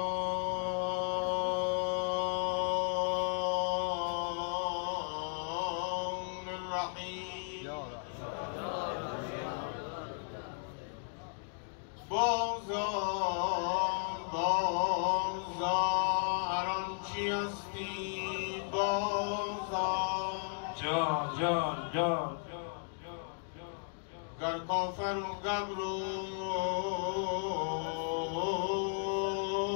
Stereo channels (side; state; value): right; silent; 54 dB below the other